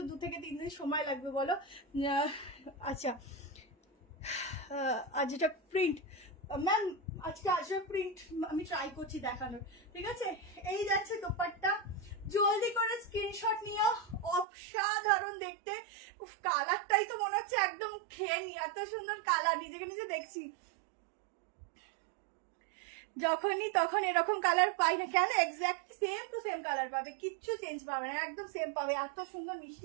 2 থেকে 3 দিন সময় লাগবে, বলো? আচ্ছা, আর যেটা প্রিন্ট ম্যাম, আজকে আজরাক প্রিন্ট আমি ট্রাই করছি দেখানোর, ঠিক আছে? এই যাচ্ছে দোপাট্টা, জলদি করে স্ক্রিনশট নিও, অসাধারণ দেখতে। উফ কালারটাই তো মনে হচ্ছে একদম খেয়ে নি, এত সুন্দর কালার, নিজেকে নিজে দেখছি। যখনই তখন এরকম কালার পাই না কেন, exactly same to same colour পাবে, কিচ্ছু চেঞ্জ পাবে না, একদম সেম পাবে, এত সুন্দর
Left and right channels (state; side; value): drops out; left; at 14.5 s